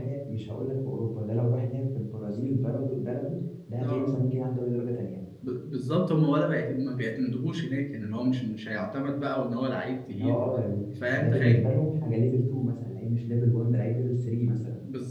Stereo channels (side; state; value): both; identical; correlation 1.00